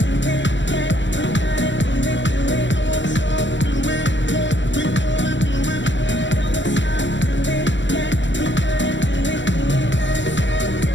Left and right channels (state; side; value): late; right; 0.53 ms